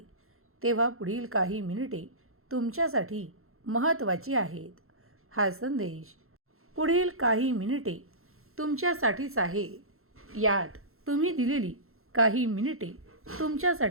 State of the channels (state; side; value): late; left; 0.62 ms